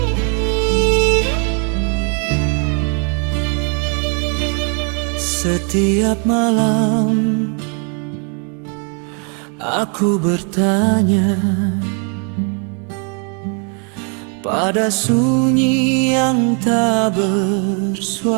Setiap malam aku bertanya pada sunyi yang tak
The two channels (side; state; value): left; quieter; 39.6 dB